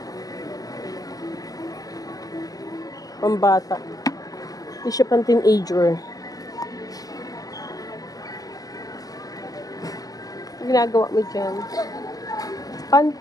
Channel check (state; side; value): late; right; 0.18 ms